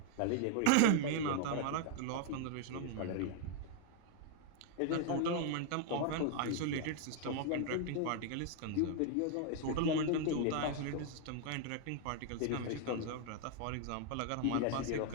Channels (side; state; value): both; different; correlation 0.00